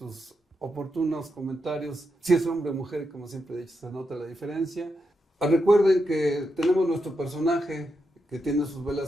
oportunos comentarios. Si es hombre o mujer, como siempre he dicho, se nota la diferencia. Recuerden que tenemos nuestro personaje que tiene sus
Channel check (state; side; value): normal; both; correlation 0.85